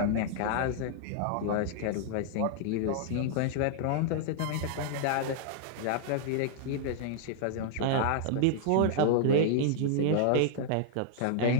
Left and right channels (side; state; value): both; different; correlation -0.01